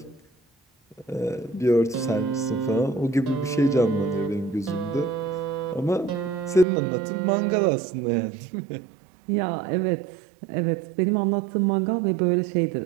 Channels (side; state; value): left; drops out; at 6.7 s